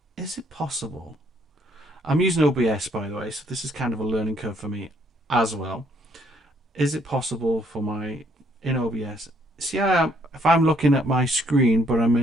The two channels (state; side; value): normal; both; correlation 0.67